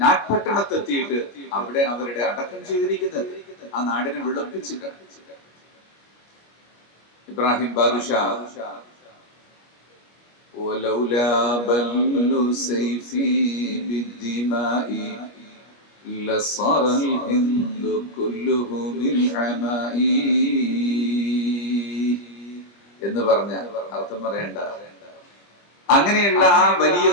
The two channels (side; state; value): right; late; 25 ms